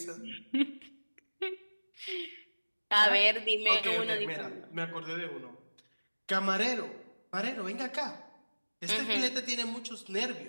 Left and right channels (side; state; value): both; inverted; correlation -1.00